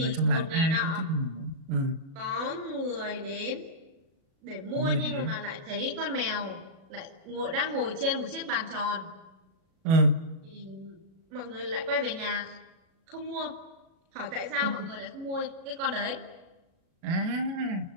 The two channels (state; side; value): late; left; 37 ms